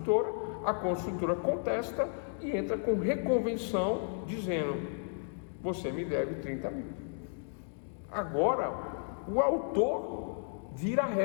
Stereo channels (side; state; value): right; silent; digital silence